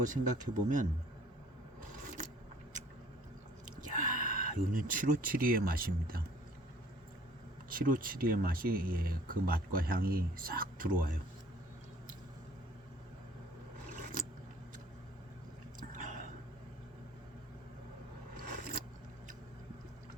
생각해 보면 이거는 7572의 맛입니다. 7572의 맛이 그 맛과 향이 싹 들어와요.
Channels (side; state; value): both; normal; correlation 0.55